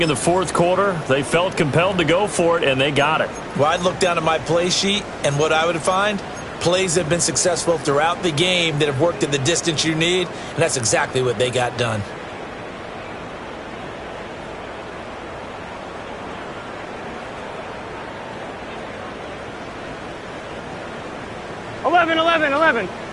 in the 4th quarter. They felt compelled to go for it, and they got it. Well, I'd look down at my play sheet, and what I would find, plays have been successful throughout the game that have worked in the distance you need, and that's exactly what they got done.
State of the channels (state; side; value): identical; both; correlation 1.00